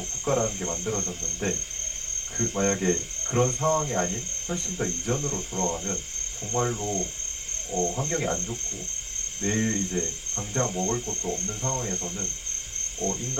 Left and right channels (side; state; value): both; identical; correlation 1.00